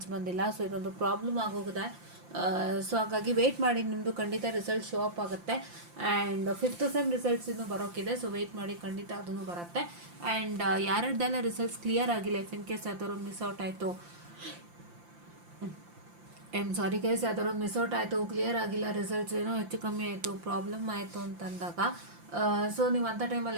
ಬಂದಿಲ್ಲ. ಸೊ ಇದೊಂದು ಪ್ರಾಬ್ಲಮ್ ಆಗೋಗಿದೆ. ಸೊ ಹಾಗಾಗಿ ವೆಯ್ಟ್ ಮಾಡಿ, ನಿಮ್ಮದು ಖಂಡಿತ ರಿಸಲ್ಟ್ ಶೋ ಅಪ್ ಆಗುತ್ತೆ. ಆ್ಯಂಡ್ 5th ಸೆಮ್ ರಿಸಲ್ಟ್ಸ್ ಇನ್ನೂ ಬರೋಕ್ಕಿದೆ. ಸೊ ವೆಯ್ಟ್ ಮಾಡಿ, ಖಂಡಿತ ಅದನ್ನು ಬರುತ್ತೆ. ಆ್ಯಂಡ್ ಯಾರ್ಯಾರ್ದೆಲ್ಲ ರಿಸಲ್ಟ್ಸ್ ಕ್ಲಿಯರ್ ಆಗಿಲ್ಲ, ಇಫ್ ಇನ್ ಕೇಸ್ ಯಾವ್ದಾದ್ರು ಮಿಸ್ ಔಟ್ ಆಯಿತು, ಸಾರಿ ಗೈಸ್, ಯಾವ್ದಾದ್ರು ಮಿಸ್ ಔಟ್ ಆಯಿತು, ಕ್ಲಿಯರ್ ಆಗಿಲ್ಲ, ರಿಸಲ್ಟ್ಸ್ ಏನೋ ಹೆಚ್ಚು ಕಮ್ಮಿ ಆಯಿತು, ಪ್ರಾಬ್ಲಮ್ ಆಯಿತು ಅಂತಂದಾಗ ಸೊ ನೀವು ಅಂಥ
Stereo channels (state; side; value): late; left; 5.8 ms